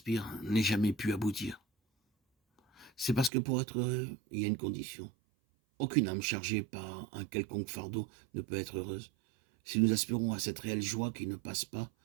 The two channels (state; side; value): drops out; left; at 3.3 s